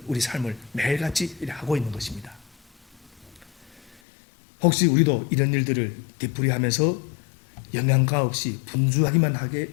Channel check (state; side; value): drops out; right; at 4.0 s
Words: 우리 삶을 매일같이 하고 있는 것입니다. 혹시 우리도 이런 일들을 되풀이하면서 영양가 없이 분주하기만 하게